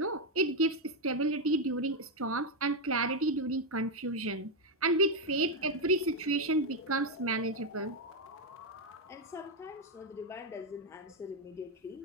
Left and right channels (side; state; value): both; normal; correlation 0.04